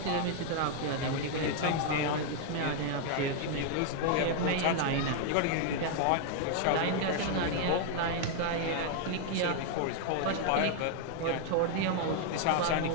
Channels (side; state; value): both; different; correlation 0.00